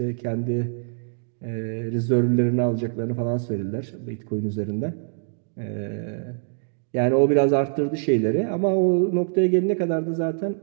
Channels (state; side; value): silent; left; digital silence